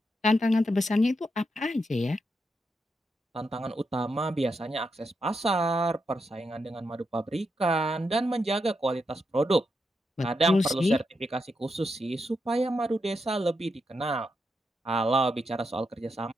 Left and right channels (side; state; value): both; normal; correlation 0.84